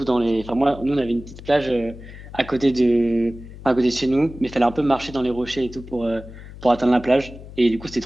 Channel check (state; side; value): noise; left; hum, 15 dB below the sound